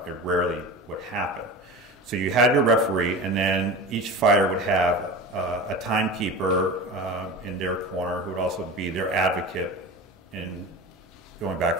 It rarely would happen. So you had your referee, and then each fighter would have a timekeeper in their corner who would also be their advocate in going back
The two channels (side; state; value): both; normal; correlation 0.31